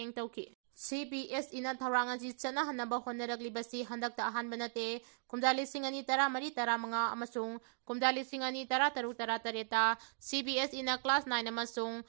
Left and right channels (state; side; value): silent; left; digital silence